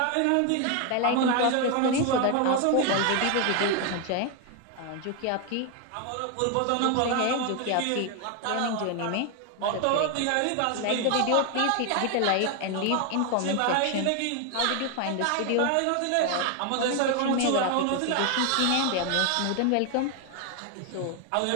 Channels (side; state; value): both; different; correlation 0.01